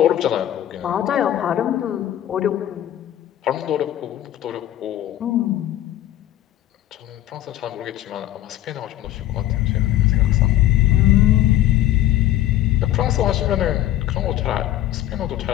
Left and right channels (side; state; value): right; quieter; 13.2 dB